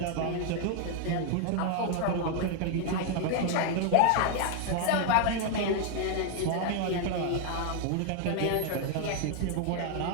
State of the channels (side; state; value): both; different; correlation 0.00